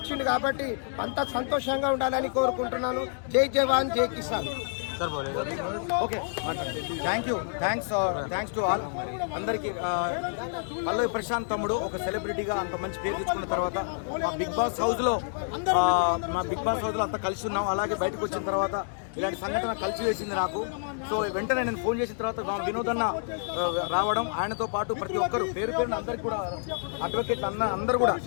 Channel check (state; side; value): silent; right; digital silence